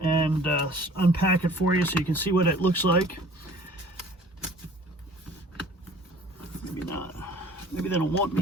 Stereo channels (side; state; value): both; normal; correlation 0.50